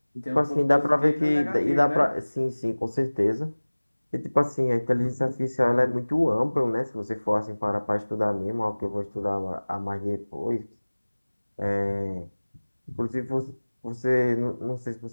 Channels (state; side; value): inverted; both; correlation -1.00